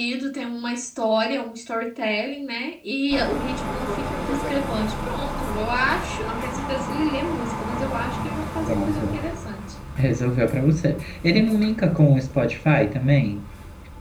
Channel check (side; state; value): both; identical; correlation 1.00